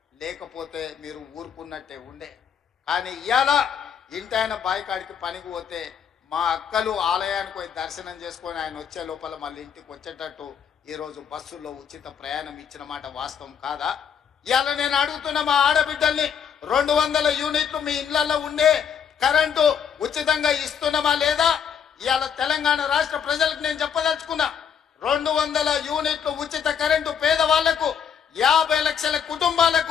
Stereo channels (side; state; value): right; quieter; 7.8 dB